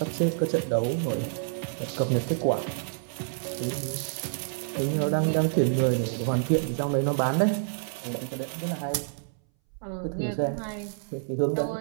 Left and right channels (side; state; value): left; silent; 59 dB below the other